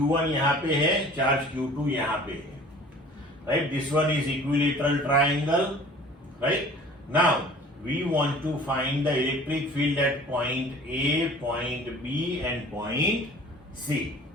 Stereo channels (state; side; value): normal; both; correlation 0.47